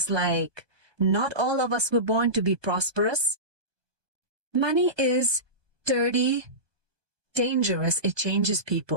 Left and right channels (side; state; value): left; late; 1.2 ms